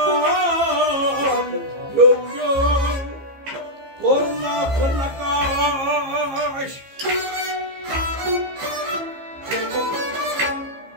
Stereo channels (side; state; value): left; late; 15 ms